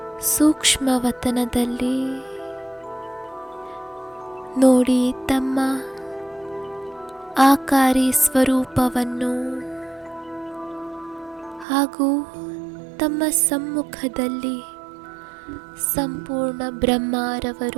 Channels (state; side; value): drops out; left; at 11.7 s